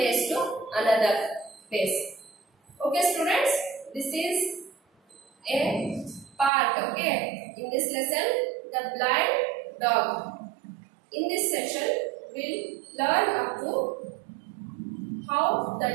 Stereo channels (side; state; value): left; drops out; at 6.5 s